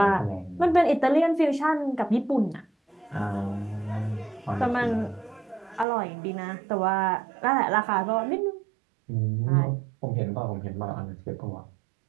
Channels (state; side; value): drops out; left; at 5.9 s